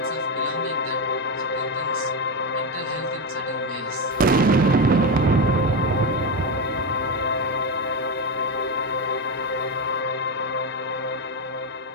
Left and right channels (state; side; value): normal; both; correlation 0.13